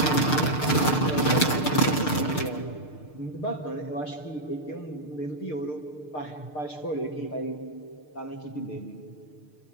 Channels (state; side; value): late; right; 6.6 ms